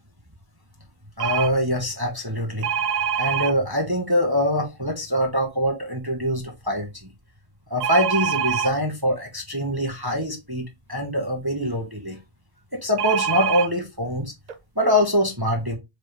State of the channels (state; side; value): late; left; 1.1 ms